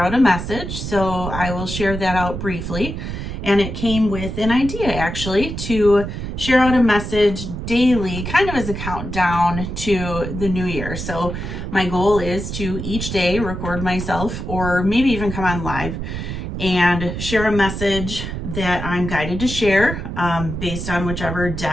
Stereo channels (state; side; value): noise; right; rumble, 6 dB below the sound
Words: out a message. So I will share that out briefly. And it came with an idea actually to share out a message daily, kind of as a countdown to the new year. So my goal is to each day record myself or maybe even come on live and share a message that I'm guided to share based on whichever